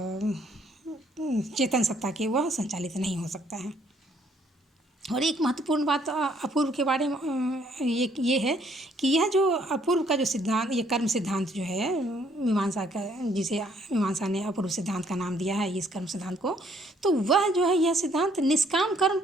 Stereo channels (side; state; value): both; normal; correlation 0.66